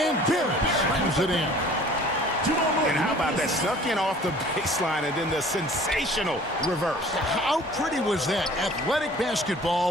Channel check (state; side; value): normal; both; correlation 0.49